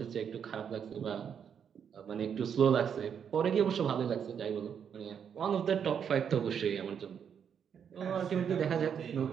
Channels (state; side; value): quieter; left; 7.8 dB